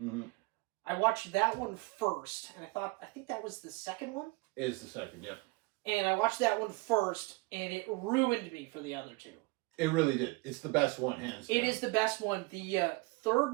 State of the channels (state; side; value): quieter; left; 24.8 dB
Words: I watched that one first, and I think that was the second one? It is the second, yep. And I watched that one first, and it ruined me for the other two. It really did. It's the best one, hands down. It is the best one. The